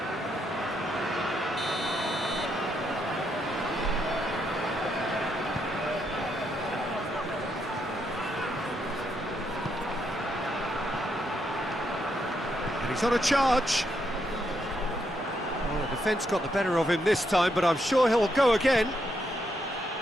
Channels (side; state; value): both; normal; correlation 0.78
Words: And he's on a charge. Well, the defence got the better of him this time, but I'm sure he'll go again.